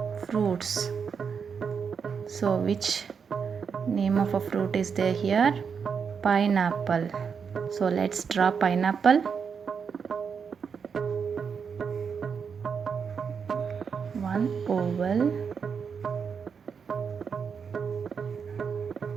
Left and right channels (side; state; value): left; quieter; 6.3 dB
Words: fruits. So, which name of a fruit is there here? Pineapple. So, let's draw pineapple. One oval.